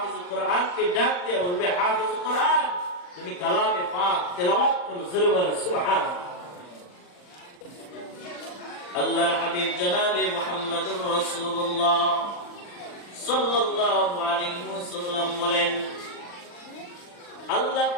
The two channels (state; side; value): late; right; 39 ms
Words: কোরআনকে ডাক দিয়ে বলবে, হাফেজ কোরআন তুমি কালামে পাক তেলাওয়াত করো, জোরে বলো সুবহানাল্লাহ। আল্লাহর হাবিব জনাবে মুহাম্মদুর রাসূলুল্লাহ সাল্লাল্লাহু আলাইহি ওয়াসাল্লাম বলেন, আল্লাহ